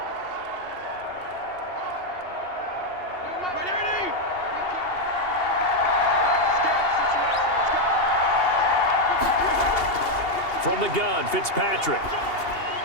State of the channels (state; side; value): late; right; 2.8 ms